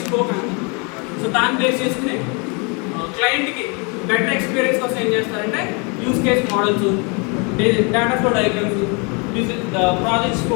స్కోప్ ఎంత, సో దాన్ని బేస్ చేసుకుని క్లయింట్కి బెటర్ ఎక్స్పీరియన్స్ కోసం ఏం చేస్తారంటే use case models, data flow diagrams, project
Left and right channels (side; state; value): right; quieter; 32.9 dB